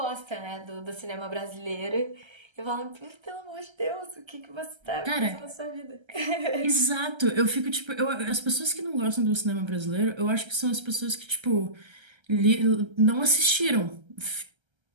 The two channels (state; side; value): late; left; 1.3 ms